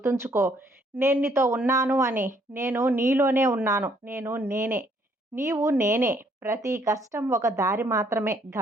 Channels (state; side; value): normal; both; correlation 0.66